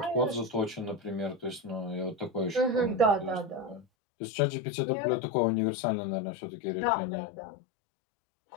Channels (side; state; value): right; drops out; at 3.9 s